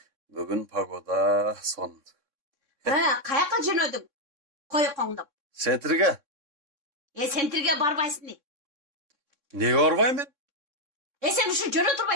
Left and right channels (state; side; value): late; left; 3.6 ms